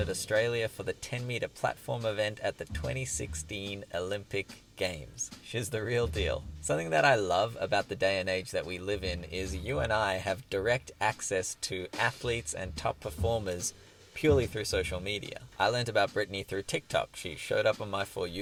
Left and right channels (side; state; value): both; identical; correlation 1.00